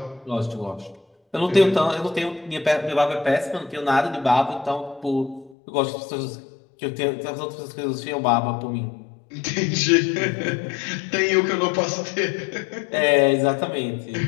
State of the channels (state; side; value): drops out; right; at 5.6 s